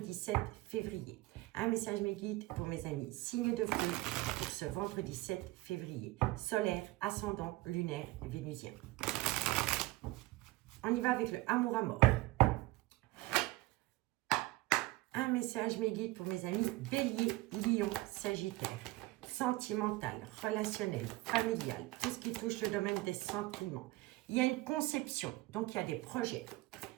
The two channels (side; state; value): left; quieter; 19.3 dB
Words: 7 février. Un message mes guides pour mes amis. Signe de feu pour ce vendredi 7 février. Solaire, ascendant, lunaire, vénusien. On y va avec le amour à mort. Un message mes guides pour mes amis. Bélier, Lion, Sagittaire. Sentimental, relationnel, familial, tout ce qui touche le domaine des sentiments. Il y a une conception, donc il y a des projets.